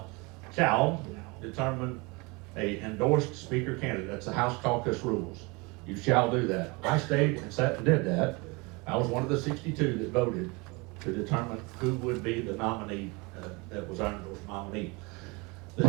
determine a endorsed speaker candidate. That's the House caucus rules. You shall do that. I stayed and sat and did that. I was one of the 62 that voted to determine who would be the nominee that was our endorsed nominee. The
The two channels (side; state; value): left; quieter; 27.1 dB